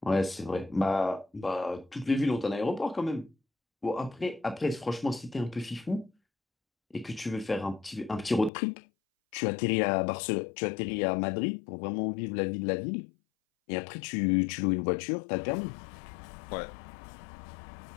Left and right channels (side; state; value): right; drops out; at 8.5 s